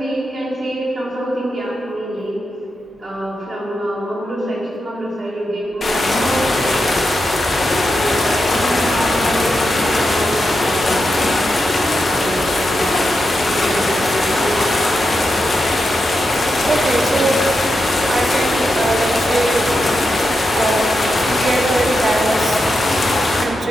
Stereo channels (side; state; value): both; normal; correlation 0.87